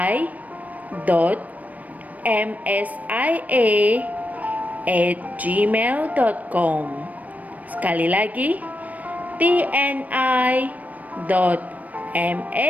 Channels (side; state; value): left; late; 0.074 ms